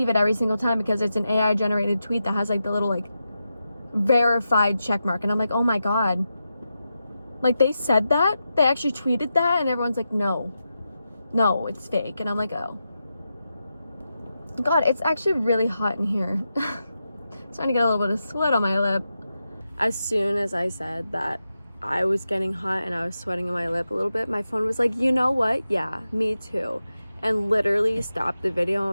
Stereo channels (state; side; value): inverted; both; correlation -0.89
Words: it every single time because it's an AI generated tweet that has like the little like verified check mark, and I'm like, oh my God, like they said that, they actually tweeted that, and everyone's like, no, it's fake. And I'm like, oh God, it's actually really hot in here. Starting to get a little bit of sweat on my lip. As soon as I said that I was getting hot and I was sweating on my lip a little bit, my phone was like, you know what? Yeah, me too. And literally stopped the video